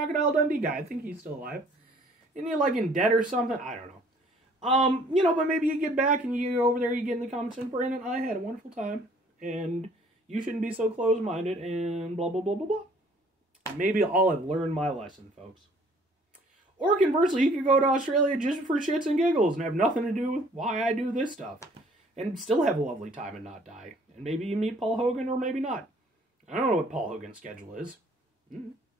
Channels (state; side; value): normal; both; correlation 0.57